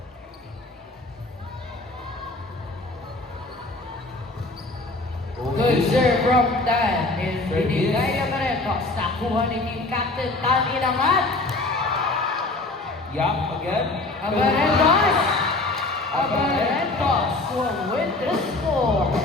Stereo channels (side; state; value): right; quieter; 3.0 dB